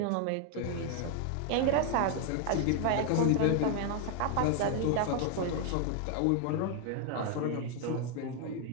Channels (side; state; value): both; different; correlation 0.01